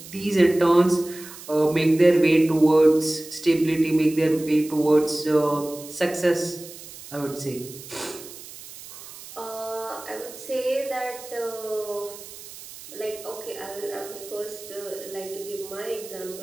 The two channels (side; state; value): right; noise; hiss, 16 dB below the sound